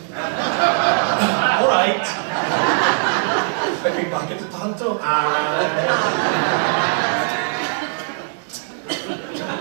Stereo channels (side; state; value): left; silent; 62 dB below the other